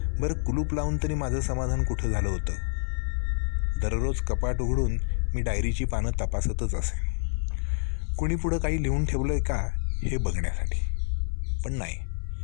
बरं, कुलूप लावून तरी माझं समाधान कुठं झालं होतं. दररोज कपाट उघडून मी डायरीची पानं तपासतच असे, कुणी पुढं काही लिहून ठेवलं आहे का हे बघण्यासाठी. पण नाही,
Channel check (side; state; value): right; silent; 60 dB below the other